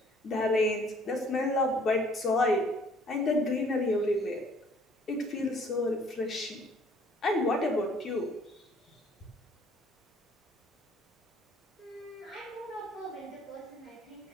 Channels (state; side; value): normal; both; correlation 0.58